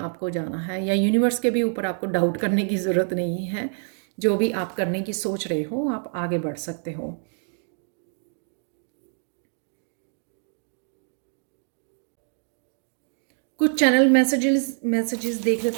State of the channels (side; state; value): left; silent; 61 dB below the other